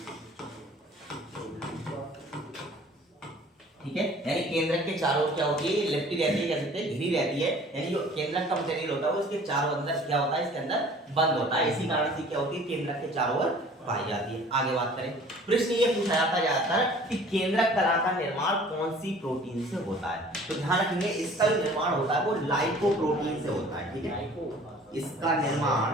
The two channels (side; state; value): both; normal; correlation 0.49